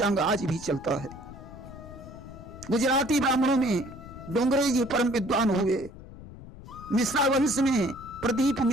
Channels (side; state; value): left; noise; rumble, 16 dB below the sound